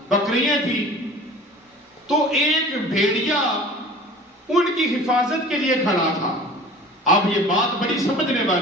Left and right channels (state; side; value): normal; both; correlation 0.42